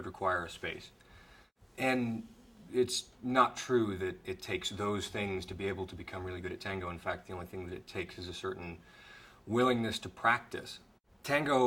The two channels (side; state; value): both; identical; correlation 1.00